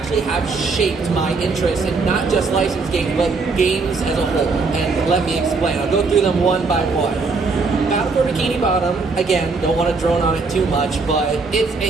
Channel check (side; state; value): left; quieter; 4.2 dB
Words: have shaped my interest in not just licensed games, but games as a whole. And let me explain. I'll go through them one by one. Battle for Bikini Bottom, again, don't want to drone on it too much, but it's